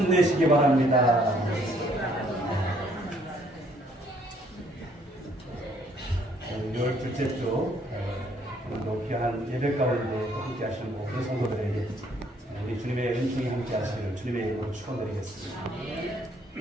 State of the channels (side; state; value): both; normal; correlation 0.65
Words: 바랍니다. 열 둘째 주 오늘도 귀한 예배 가운데 함께 하시는 모든 성도들에게 우리 주님의 은총이 함께 하시기를 주님의 이름으로 축원드리겠습니다.